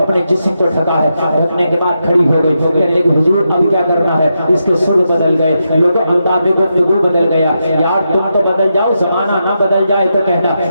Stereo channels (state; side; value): inverted; both; correlation -0.85